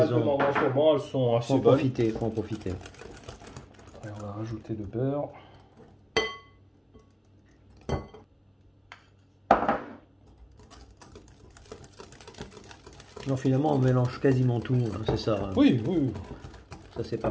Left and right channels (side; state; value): both; identical; correlation 1.00